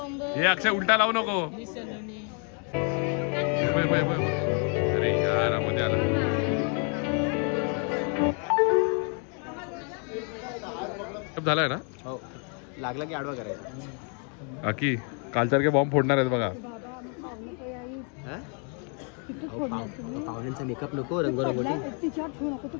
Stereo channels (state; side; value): quieter; right; 39.8 dB